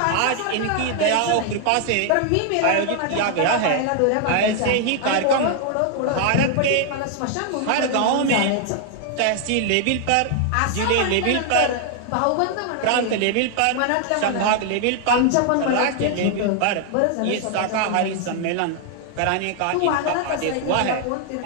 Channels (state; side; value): different; both; correlation 0.00